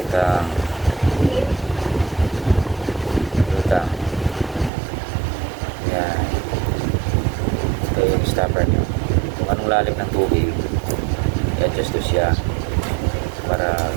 Yan. Ito yung stopper nyo. Kung anong lalim ng tubig, i-adjust to siya para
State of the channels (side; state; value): left; drops out; at 4.7 s